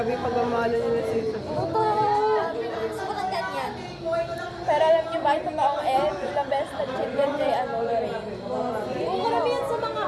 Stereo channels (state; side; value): identical; both; correlation 1.00